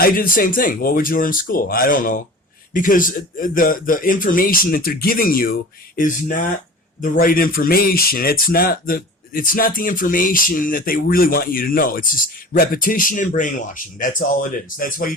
did the same thing. What would you learn in school? I don't know. Because the information that they're giving you is not the right information. It's not the information that they really want you to know. It's just repetition and brainwashing. That's all it is. That's why you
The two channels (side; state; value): both; normal; correlation 0.38